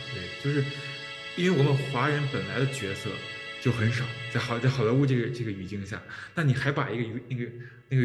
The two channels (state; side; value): identical; both; correlation 1.00